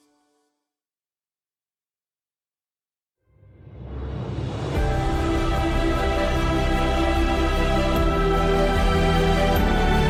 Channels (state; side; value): identical; both; correlation 1.00